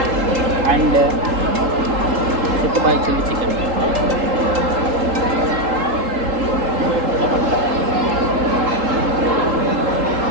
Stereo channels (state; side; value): late; left; 3.8 ms